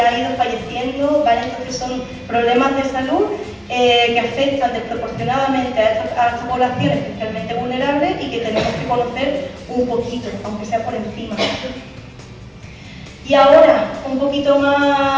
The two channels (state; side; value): identical; both; correlation 1.00